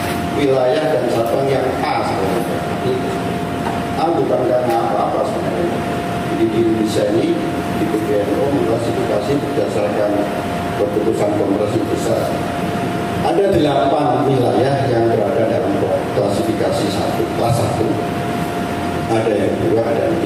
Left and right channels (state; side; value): identical; both; correlation 1.00